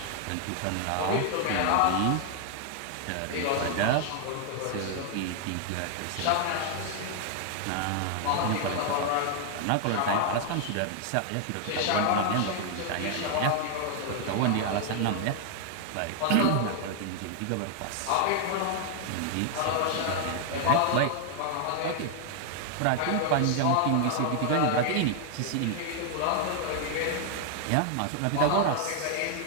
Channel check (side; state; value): both; different; correlation 0.00